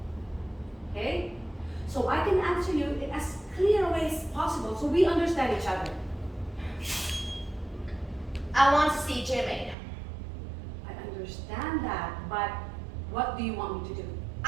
Okay? So I can answer you in as clear a way as possible so we understand each other. I want to see Jimmy. I understand that, but what do you want me to do?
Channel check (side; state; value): left; drops out; at 9.8 s